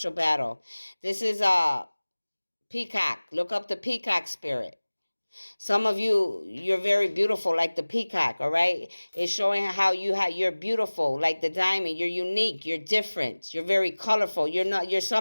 battle. This is peacock. Look up the peacock spirit. Some of you, you're very beautiful like the peacock, all right? It's showing how you're beautiful like the diamond. You're unique, you're different, you're very colorful. You're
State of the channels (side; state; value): both; inverted; correlation -1.00